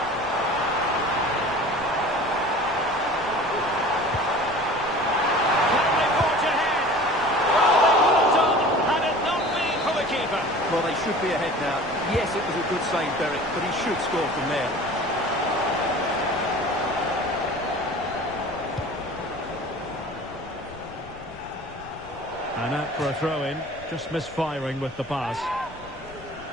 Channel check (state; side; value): noise; left; rumble, 21 dB below the sound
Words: Can they forge ahead? Well, they would have done had it not been for the keeper. Well, they should be ahead now. Yes, it was a good save, Derek, but he should score from there. And out for a throw-in, just misfiring with the pass.